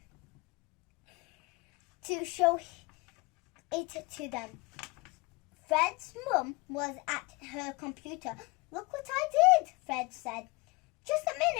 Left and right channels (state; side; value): quieter; right; 25.9 dB